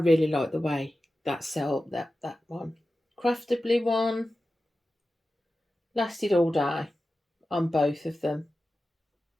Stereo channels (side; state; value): both; normal; correlation 0.94